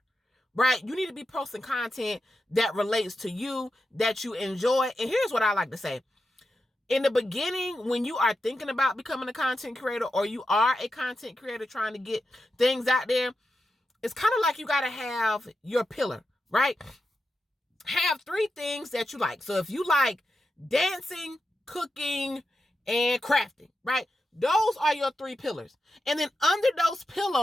Right? You need to be posting content that relates to you, that you enjoy. And here's what I like to say. In the beginning, when you are thinking about becoming a content creator, or you are a content creator trying to get things out there, it's kind of like you got to have your pillar, right? Have 3 things that you like. So if you like dancing, cooking, and crafting, right? Those are your 3 pillars. And then under those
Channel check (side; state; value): both; normal; correlation 0.89